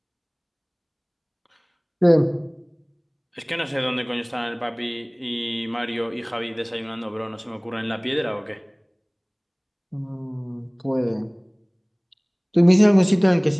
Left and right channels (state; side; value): identical; both; correlation 1.00